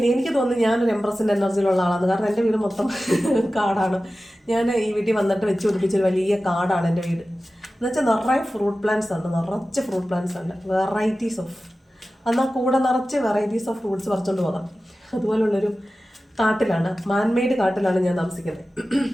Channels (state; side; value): normal; both; correlation 0.95